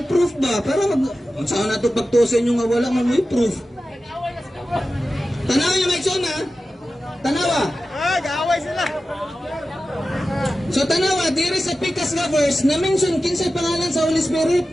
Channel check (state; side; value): normal; both; correlation 0.94